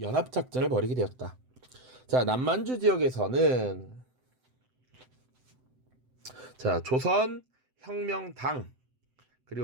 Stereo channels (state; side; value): late; left; 7.8 ms